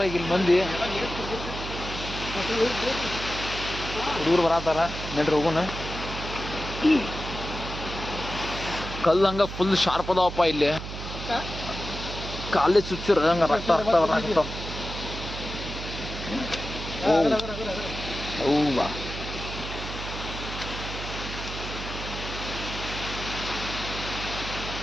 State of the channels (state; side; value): noise; right; hum, 8 dB below the sound